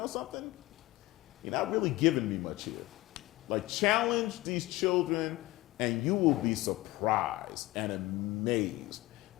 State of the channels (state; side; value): quieter; right; 18.9 dB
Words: something? You're not really giving me much here. Like, challenge these children, and you will be surprised and amazed.